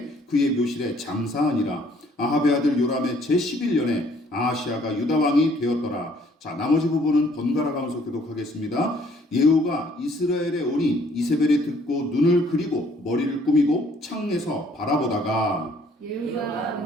그의 묘실에 장사하니라. 아합의 아들 요람의 제11년에 아하시아가 유다 왕이 되었더라. 자, 나머지 부분은 번갈아 가면서 교독하겠습니다. 예후가 이스라엘에 오니 이세벨이 듣고 눈을 그리고 머리를 꾸미고 창에서 바라보다가 예후가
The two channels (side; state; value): both; normal; correlation 0.62